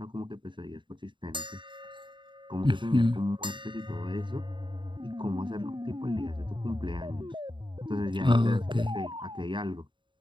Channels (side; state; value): left; late; 0.23 ms